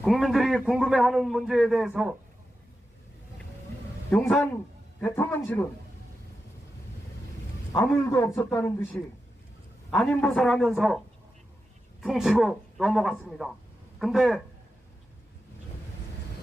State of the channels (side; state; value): both; normal; correlation 0.90